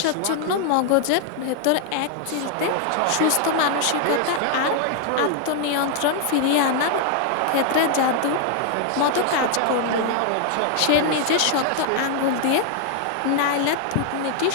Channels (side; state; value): both; different; correlation 0.00